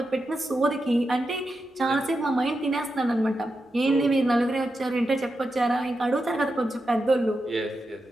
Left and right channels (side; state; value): both; normal; correlation 0.88